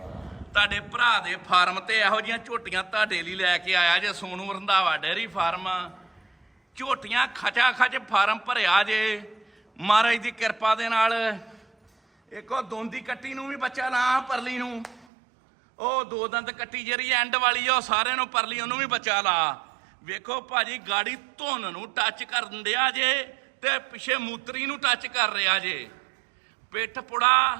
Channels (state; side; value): drops out; left; at 15.1 s